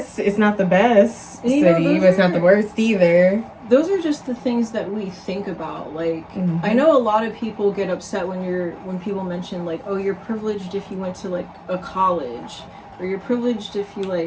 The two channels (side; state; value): both; identical; correlation 1.00